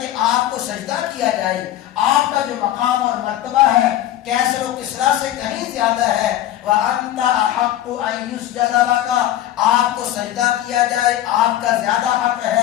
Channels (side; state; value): right; quieter; 13.0 dB